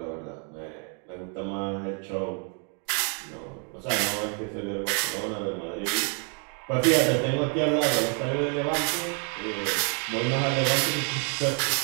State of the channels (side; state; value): left; quieter; 40.0 dB